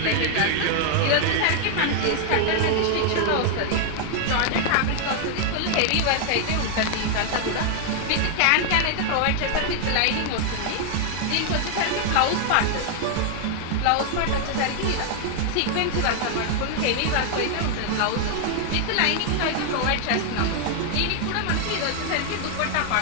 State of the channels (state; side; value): different; both; correlation 0.00